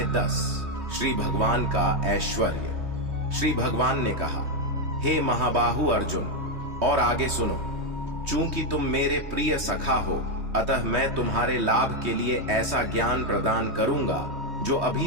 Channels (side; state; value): left; late; 3.2 ms